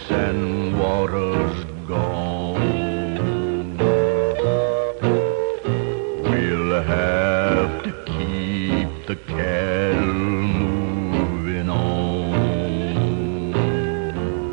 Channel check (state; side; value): silent; left; digital silence